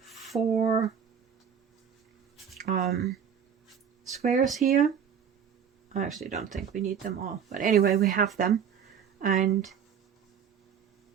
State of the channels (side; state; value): left; quieter; 7.7 dB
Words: squares here. I actually don't think we need them all, but anyway, we have them, and